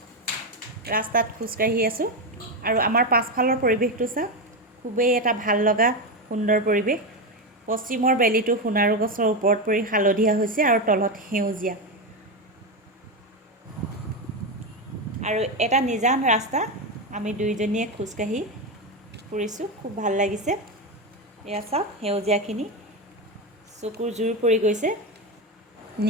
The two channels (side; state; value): both; normal; correlation 0.12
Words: ৰাস্তাত খোজকাঢ়ি আছোঁ আৰু আমাৰ পাছফালৰ পৰিৱেশটো চাওক, খুবেই এটা ভাল লগা সুন্দৰ পৰিৱেশ। পশ্চিমৰ বেলিটো সোণাৰু গছৰ ওপৰত পৰি হালধীয়া হৈছে আৰু তলত সেউজীয়া, আৰু এটা নিজান ৰাস্তা আমি দুইজনীয়ে খোজকাঢ়ি ফুৰিছোঁ, খুব ভাল লাগিছে। এয়া চাওক, সেউজীয়াখিনি চকুৰ জোৰ পৰি গৈছে।